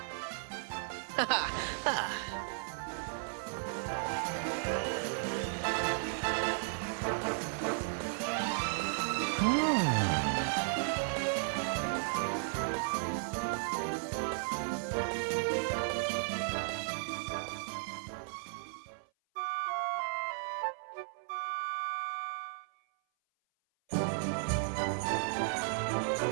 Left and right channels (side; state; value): left; silent; 54 dB below the other